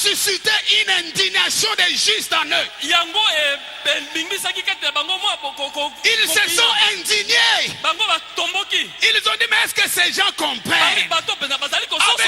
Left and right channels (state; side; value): identical; both; correlation 1.00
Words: une indignation des justes en eux. Yango bingisaki kati na bango mwa boko. Ils se sont indignés. Bango batomboki. Ils ont dit, mais est-ce que ces gens comprennent Bato pena bazali avec